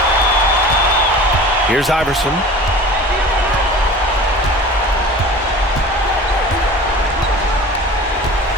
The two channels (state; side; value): normal; both; correlation 0.39